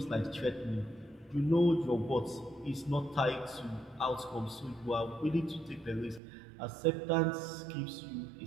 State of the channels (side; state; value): left; drops out; at 6.2 s